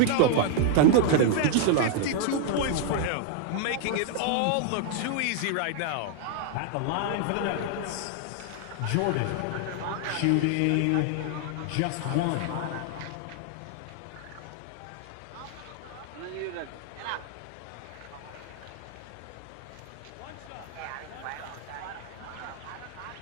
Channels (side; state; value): both; different; correlation 0.00